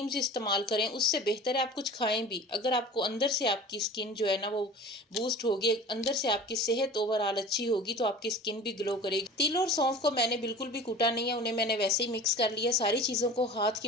इस्तेमाल करें, उससे बेहतर है आप कुछ खाएं भी। अगर आपको अंदर से आपकी स्किन जो है ना वो बूस्ट होगी, अंदर से आपकी सेहत ओवरऑल अच्छी होगी तो आपकी स्किन भी ग्लो करेगी। तिल और सौंफ को मैंने बिल्कुल भी कूटा नहीं है, उन्हें मैंने वैसे ही मिक्स कर लिया। सारी चीज़ों को हाथ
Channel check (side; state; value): both; normal; correlation 0.39